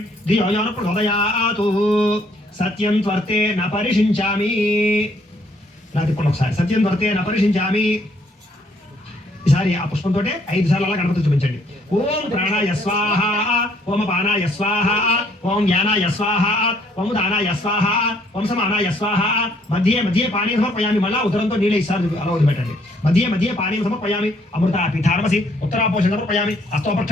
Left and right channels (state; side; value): normal; both; correlation 0.66